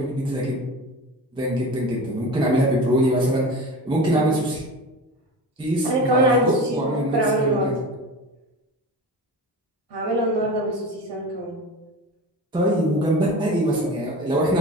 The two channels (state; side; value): normal; both; correlation 0.32